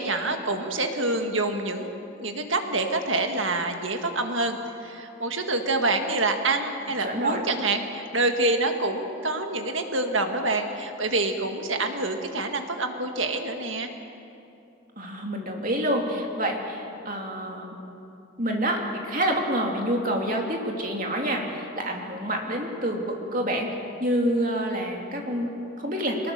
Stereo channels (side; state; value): both; normal; correlation -0.01